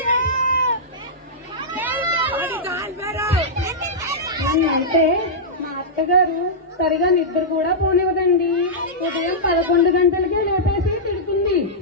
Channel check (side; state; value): both; normal; correlation -0.11